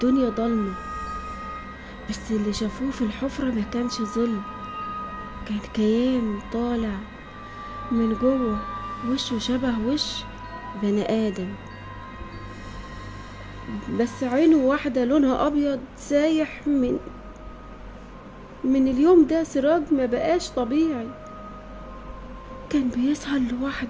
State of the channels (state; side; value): identical; both; correlation 1.00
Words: ضلمة. بس اللي شافوه في الحفرة ما كانش ظل، كان كيان طالع من جوه، وشه شبه وش بني آدم، بس عينه واحدة لونها أبيض سايح. من اليوم ده سراج ما بقاش طبيعي. كان بيسهر